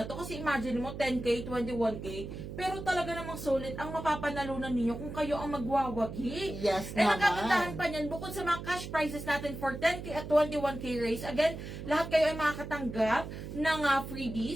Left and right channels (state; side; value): noise; right; hum, 9 dB below the sound